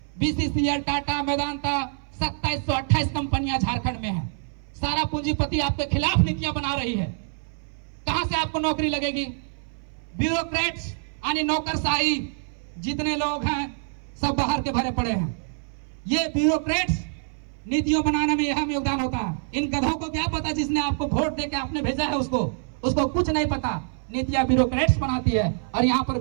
बीसीसीएल, टाटा, वेदांता, 2728 कंपनियां झारखंड में है। सारा पूंजीपति आपके खिलाफ नीतियां बना रही है। कहां से आपको नौकरी लगेगी? ब्यूरोक्रेट्स यानी नौकरशाही जितने लोग हैं सब बाहर के भरे पड़े हैं। ये ब्यूरोक्रेट्स नीतियों बनाने में यह योगदान होता है। इन गधों को क्या पता जिसने आपको वोट देके आपने भेजा है उसको कुछ नहीं पता। नीतियां ब्यूरोक्रेट्स बनाती है और यहाँ पर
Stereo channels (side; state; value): left; silent; 59 dB below the other